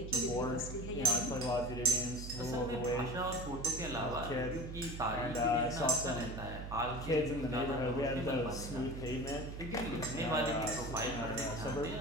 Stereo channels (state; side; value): noise; right; hum, 8 dB below the sound